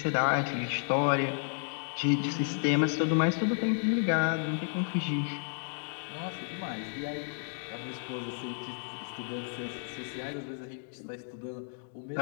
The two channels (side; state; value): right; silent; digital silence